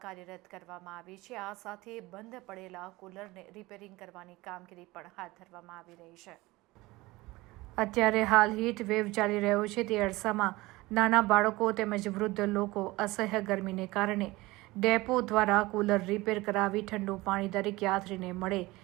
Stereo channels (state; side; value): quieter; left; 20.6 dB